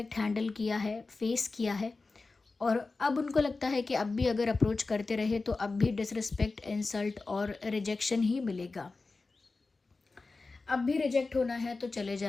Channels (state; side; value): quieter; right; 3.8 dB